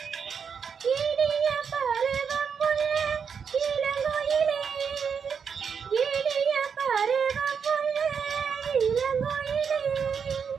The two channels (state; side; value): quieter; left; 6.6 dB